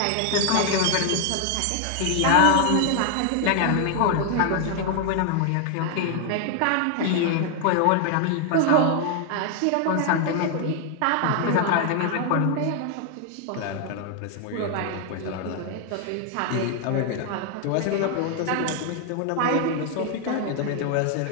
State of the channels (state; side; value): different; both; correlation 0.00